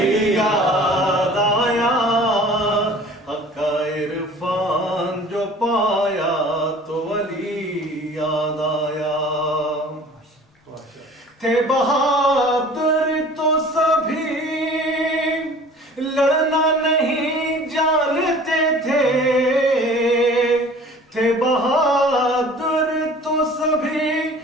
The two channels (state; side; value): normal; both; correlation 0.46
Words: یاد آیا، حق عرفان جو پایا تو علی یاد آیا، تھے بہادر تو سبھی لڑنا نہیں جانتے تھے، تھے بہادر تو سبھی